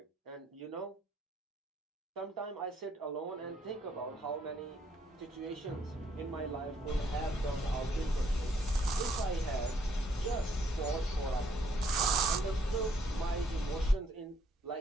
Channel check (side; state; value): both; normal; correlation 0.69